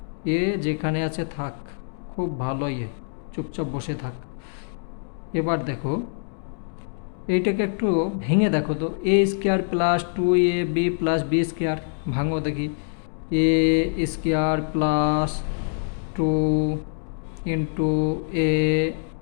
এ যেখানে আছে থাক, খুব ভালোই, চুপচাপ বসে থাক। এবার দেখো এইটাকে একটু ভেঙে দেখো তো, A square plus 2ab plus B square, ভাঙো দেখি। A square plus 2 into A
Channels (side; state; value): right; silent; digital silence